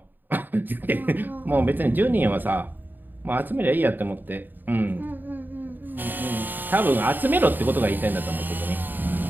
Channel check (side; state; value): left; late; 0.091 ms